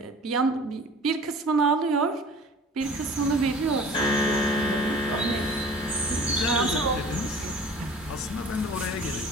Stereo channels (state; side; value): normal; both; correlation 0.44